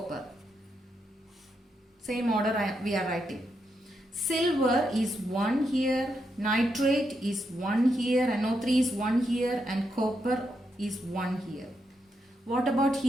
Same order we are writing. Silver is 1 here, nitrate is 1 here, NO3 is 1 here and copper is 1 here. What about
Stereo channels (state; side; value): normal; both; correlation 0.82